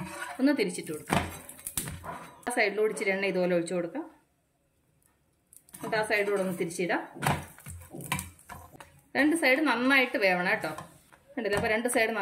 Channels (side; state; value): both; identical; correlation 1.00